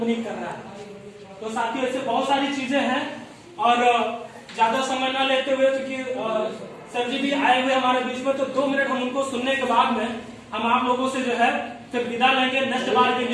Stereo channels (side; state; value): both; identical; correlation 1.00